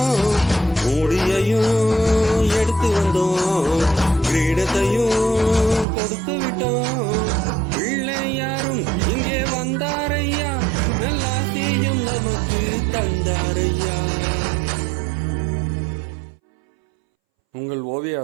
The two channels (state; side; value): drops out; left; at 5.9 s